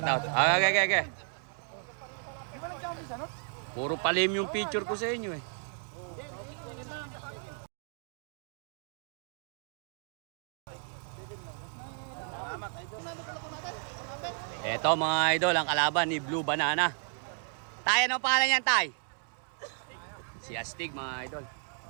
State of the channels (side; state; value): left; silent; 56 dB below the other